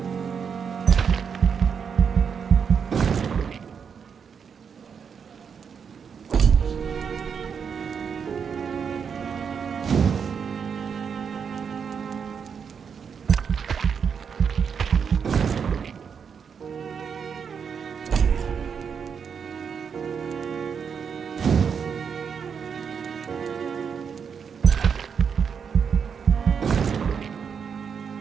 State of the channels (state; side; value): quieter; left; 6.7 dB